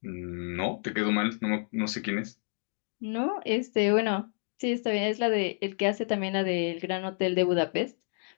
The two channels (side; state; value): right; silent; digital silence